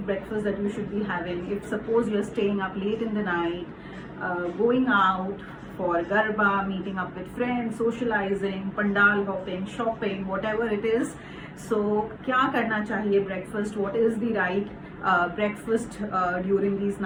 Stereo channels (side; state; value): both; identical; correlation 1.00